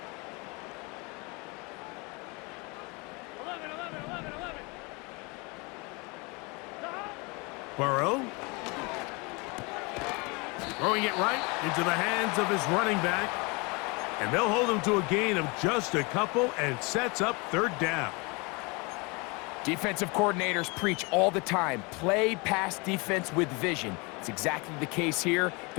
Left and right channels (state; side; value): quieter; right; 28.5 dB